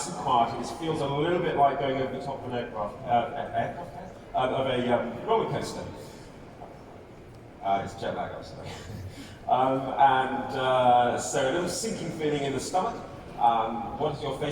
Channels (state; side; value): identical; both; correlation 1.00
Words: and quiet. It feels a little bit like going over the top of an a roller coaster. It's jet lag, I'm sorry. So a little sinking feeling in the stomach. What is your